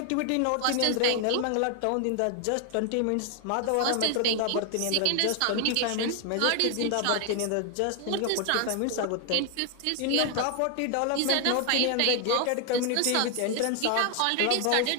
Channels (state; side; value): different; both; correlation 0.00